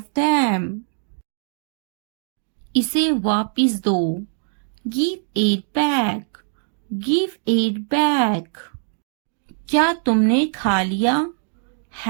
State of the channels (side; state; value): left; silent; digital silence